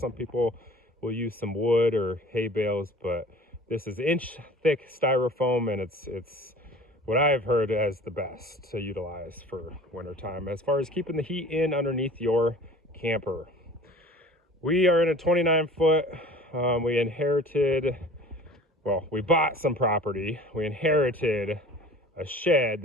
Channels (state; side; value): normal; both; correlation 0.44